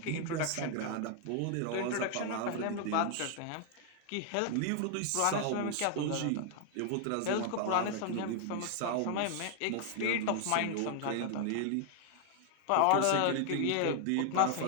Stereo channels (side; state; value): both; different; correlation 0.00